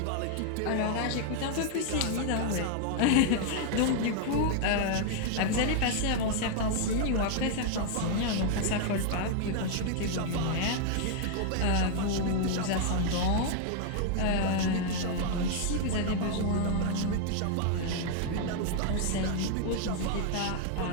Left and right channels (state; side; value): different; both; correlation 0.00